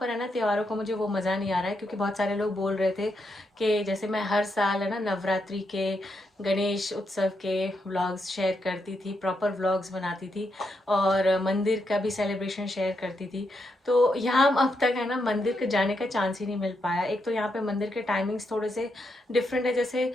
पर है ना त्योहारों का मुझे वो मज़ा नहीं आ रहा है, क्योंकि बहुत सारे लोग बोल रहे थे कि जैसे मैं हर साल है ना नवरात्रि के, गणेश उत्सव के व्लॉग्स शेयर करती थी, प्रॉपर व्लॉग्स बनाती थी और मंदिर का भी सेलिब्रेशन शेयर करती थी, तो यहाँ अब तक है ना मंदिर के जाने का चांस ही नहीं मिल पाया। एक तो यहाँ पे मंदिर के टाइमिंग्स थोड़े से डिफरेंट है, जैसे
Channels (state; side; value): normal; both; correlation 0.81